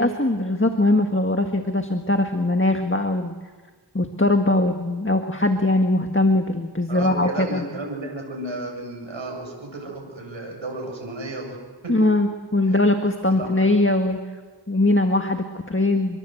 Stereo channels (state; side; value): normal; both; correlation 0.48